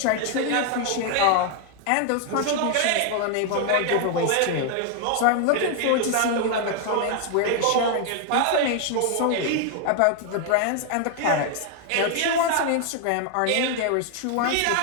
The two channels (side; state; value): both; different; correlation 0.00